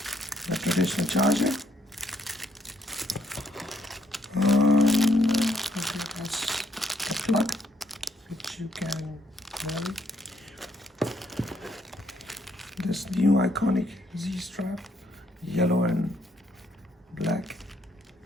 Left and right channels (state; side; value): normal; both; correlation 0.71